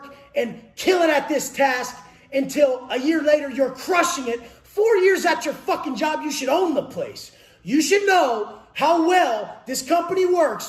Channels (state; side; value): identical; both; correlation 1.00